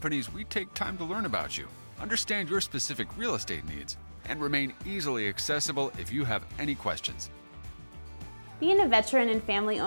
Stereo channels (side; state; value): both; inverted; correlation -1.00